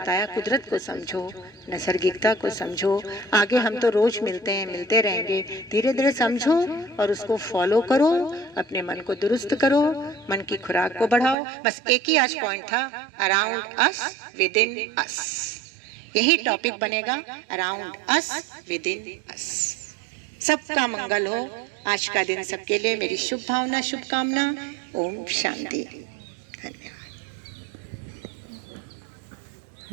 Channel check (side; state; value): left; drops out; at 11.4 s